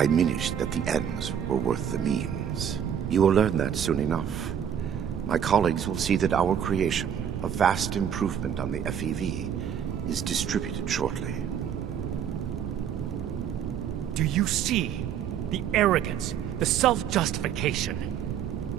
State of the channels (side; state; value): left; quieter; 8.7 dB